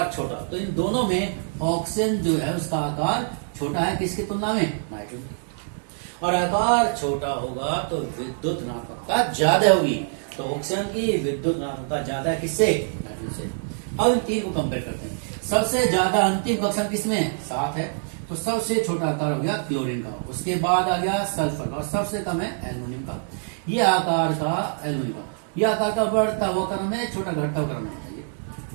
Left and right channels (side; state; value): left; silent; digital silence